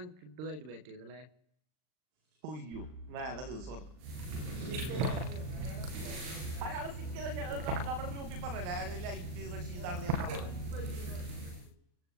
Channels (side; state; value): left; late; 39 ms